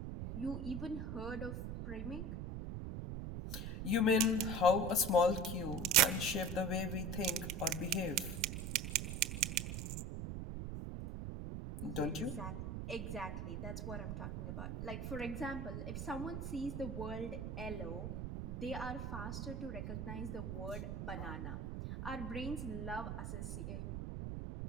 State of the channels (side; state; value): right; noise; rumble, 4 dB below the sound